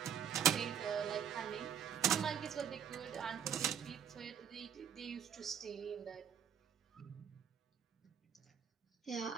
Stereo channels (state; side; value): quieter; left; 8.4 dB